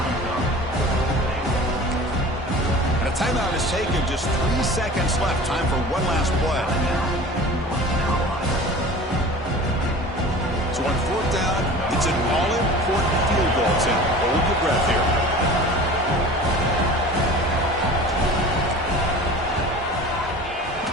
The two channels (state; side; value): normal; both; correlation 0.40